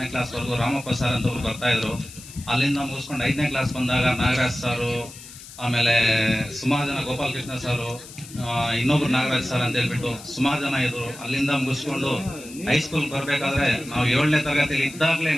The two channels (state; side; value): noise; left; hiss, 16 dB below the sound